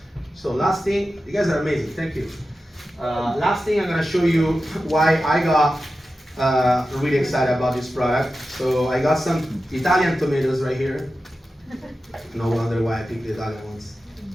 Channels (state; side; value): normal; both; correlation 0.92